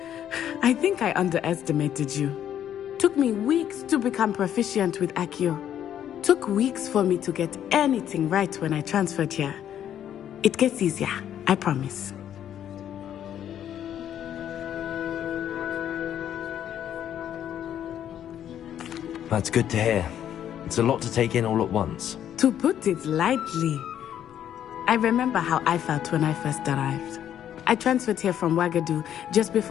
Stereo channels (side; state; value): right; quieter; 10.3 dB